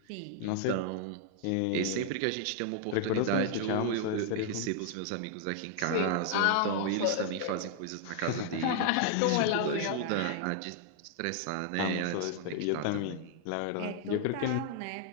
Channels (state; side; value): different; both; correlation 0.00